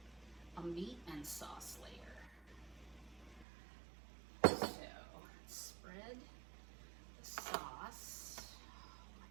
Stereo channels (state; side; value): drops out; left; at 3.5 s